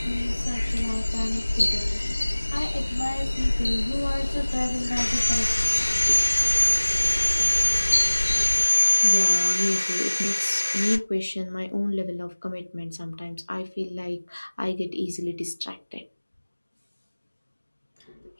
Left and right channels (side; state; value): both; inverted; correlation -1.00